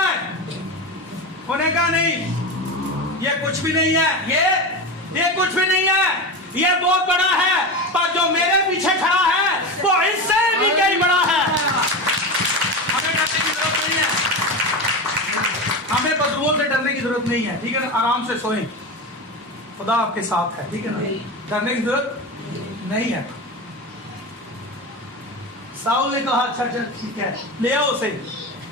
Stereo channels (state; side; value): normal; both; correlation 0.22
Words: ہے انہیں کہا نہیں یہ کچھ بھی نہیں ہے یہ کچھ بھی نہیں ہے یہ بہت بڑا ہے پر جو میرے پیچھے کھڑا ہے وہ اس سے بھی کئی بڑا ہے ہمیں ڈرنے کی ضرورت نہیں ہے ہمیں بدلوں سے ڈرنے کی ضرورت نہیں ہے ٹھیک ہے نا آرام سے سوئیں خدا آپ کے ساتھ ہے ٹھیک ہے نا ڈرنے کی ضرورت نہیں ہے ساؤل نے کہا اچھا ٹھیک ہے لے آؤ اسے